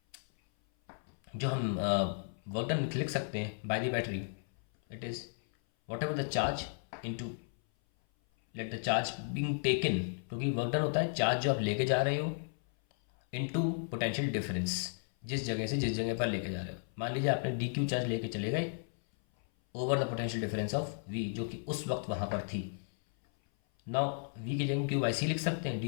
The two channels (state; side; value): silent; right; 55 dB below the other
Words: जो हम वर्क डन लिख सकते हैं by the battery, it is what ever the charge into let the charge being taken, क्योंकि वर्क डन होता है चार्ज जो आप लेके जा रहे हो इनटू पोटेंशियल डिफरेंस, जिस जगह से जिस जगह पर लेके जा रहे हो. मान लीजिए आपने डी क्यू चार्ज लेके चले गए over the potential difference of V, जो कि उस वक्त वहाँ पर थी. नाउ वी की जगह क्यू बाई सी लिख सकते हैं,